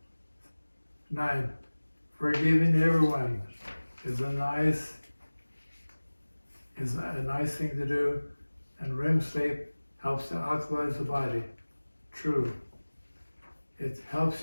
9, forgiving everyone is a nice thing to do, and REM sleep helps to alkalize the body. True. It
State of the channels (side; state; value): both; inverted; correlation -1.00